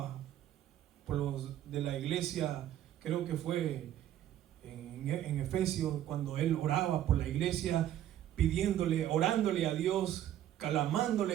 por los de la iglesia. Creo que fue en Efesios, cuando él oraba por la iglesia, pidiéndole, orándole a Dios,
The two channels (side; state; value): left; quieter; 11.9 dB